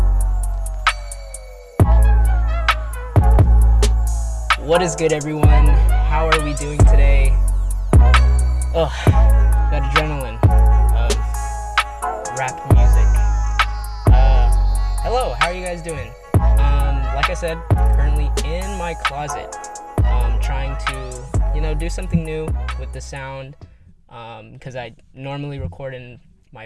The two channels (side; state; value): both; identical; correlation 1.00